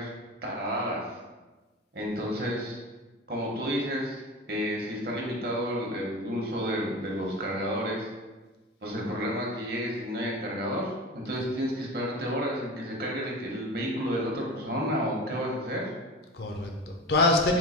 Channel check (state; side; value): normal; both; correlation 0.31